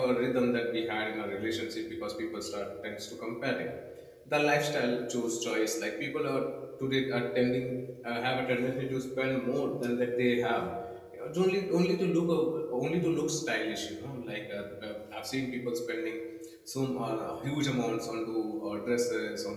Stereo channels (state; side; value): identical; both; correlation 1.00